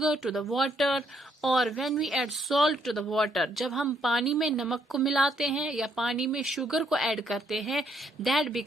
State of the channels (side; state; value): both; normal; correlation 0.71